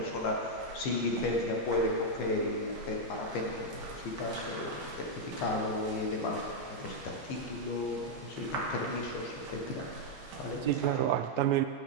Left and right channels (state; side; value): late; right; 15 ms